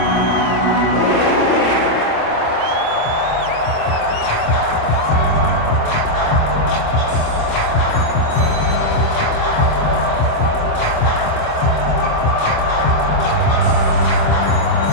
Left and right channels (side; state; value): right; late; 25 ms